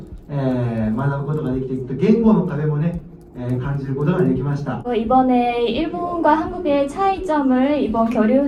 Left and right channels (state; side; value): identical; both; correlation 1.00